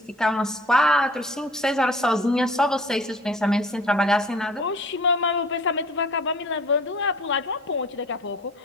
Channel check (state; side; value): normal; both; correlation 0.47